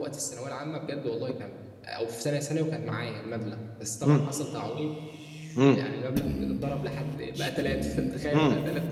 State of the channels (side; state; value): both; identical; correlation 1.00